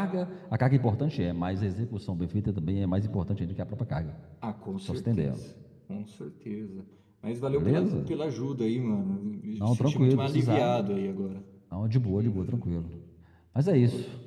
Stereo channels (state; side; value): identical; both; correlation 1.00